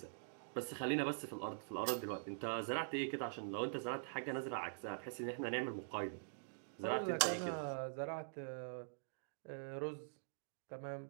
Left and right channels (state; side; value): silent; left; digital silence